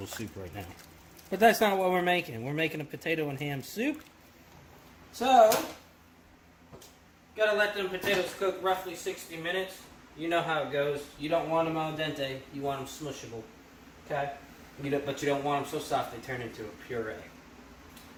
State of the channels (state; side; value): identical; both; correlation 1.00